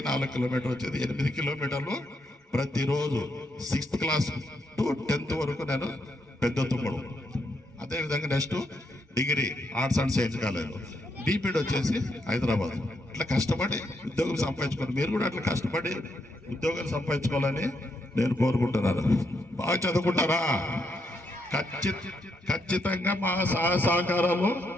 4 కిలోమీటర్ వచ్చేది, 8 కిలోమీటర్లు ప్రతిరోజు 6th క్లాస్ టు 10th వరకు నేను పెద్ద తుమ్మడు. అదేవిధంగా next degree arts and science college, BPEd వచ్చేసి హైదరాబాద్. అట్లా కష్టపడి ఉద్యోగం సంపాదించుకోవాలి. మీరు కూడా అట్లా కష్టపడి ఉద్యోగాలు సంపాదించుకోవాలని నేను కోరుకుంటున్నాను. బాగా చదువుకుంటారా? ఖచ్చితంగా మా సహకారాలు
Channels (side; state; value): both; normal; correlation 0.79